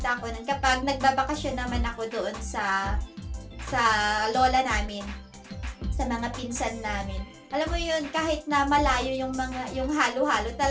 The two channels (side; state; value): both; identical; correlation 1.00